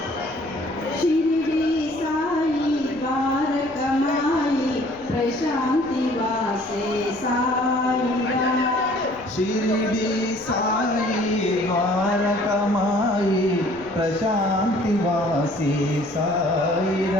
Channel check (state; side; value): noise; left; rumble, 23 dB below the sound